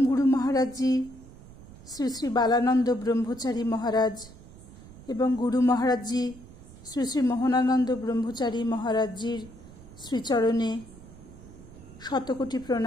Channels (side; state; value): right; noise; rumble, 19 dB below the sound